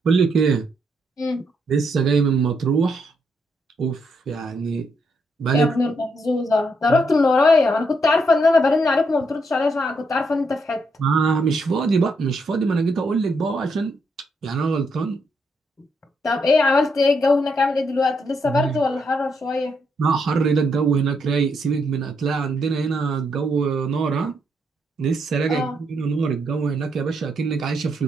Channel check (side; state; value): both; normal; correlation 0.77